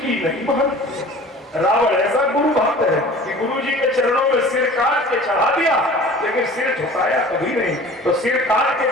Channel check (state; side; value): normal; both; correlation 0.43